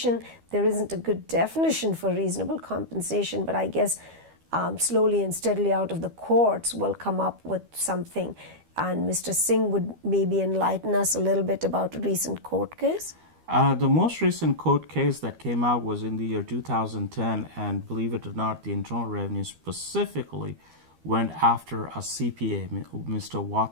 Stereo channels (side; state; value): left; late; 12 ms